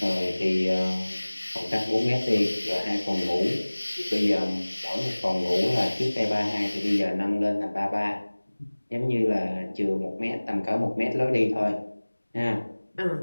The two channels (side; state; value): both; inverted; correlation -1.00